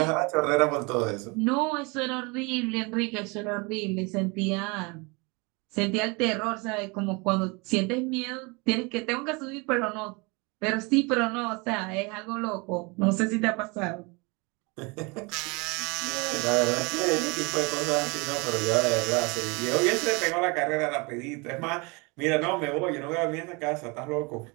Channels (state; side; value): quieter; left; 28.4 dB